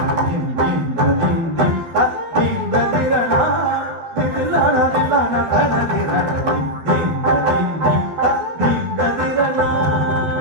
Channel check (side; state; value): left; late; 12 ms